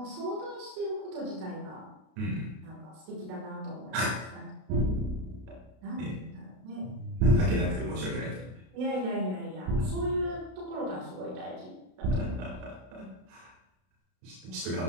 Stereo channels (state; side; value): late; left; 32 ms